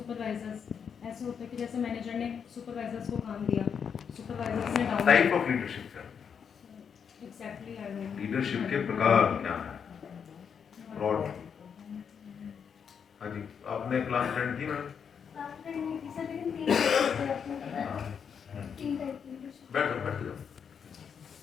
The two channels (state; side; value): quieter; right; 7.1 dB